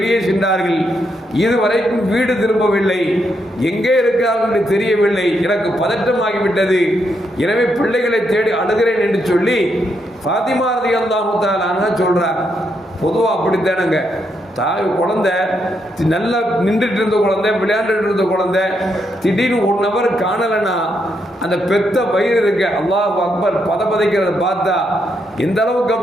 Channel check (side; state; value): both; normal; correlation 0.79